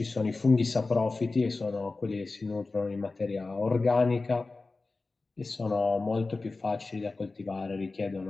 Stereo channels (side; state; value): right; quieter; 3.6 dB